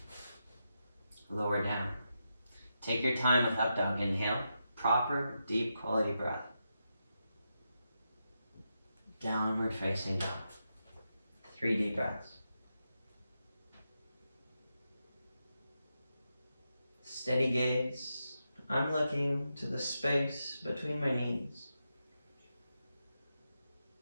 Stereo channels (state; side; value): inverted; both; correlation -0.86